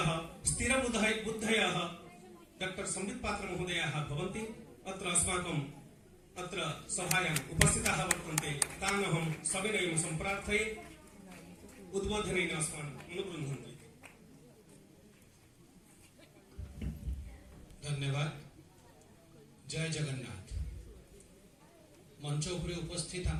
स्थिरबुद्धयः डॉक्टर संबित पात्र महोदयाः भवन्ति। अत्र अस्माकम् अत्र सभायाम् उपस्थिताः वर्तन्ते। तान् अहं सविनयं सम्प्रार्थये उद्बोधनेन अस्मान् अनुगृह्णन्ति। धन्यवाद। जय जगन्नाथ। मंच उपरे उपस्थित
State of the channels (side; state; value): both; identical; correlation 1.00